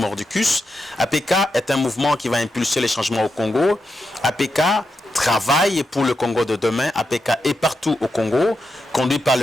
APK est un mouvement qui va impulser les changements au Congo. APK travaille pour le Congo de demain. APK est partout au Congo, conduit par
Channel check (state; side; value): normal; both; correlation 0.86